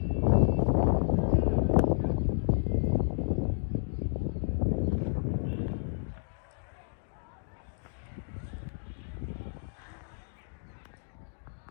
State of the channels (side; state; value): right; silent; digital silence